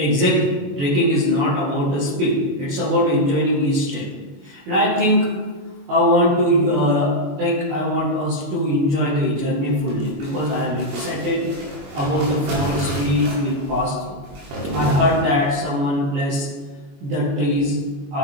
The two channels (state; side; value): late; left; 21 ms